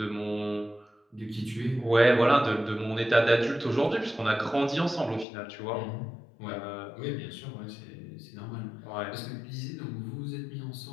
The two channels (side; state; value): right; drops out; at 5.2 s